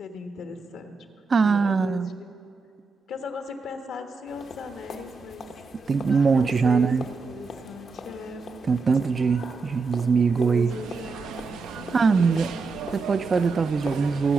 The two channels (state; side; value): quieter; left; 4.4 dB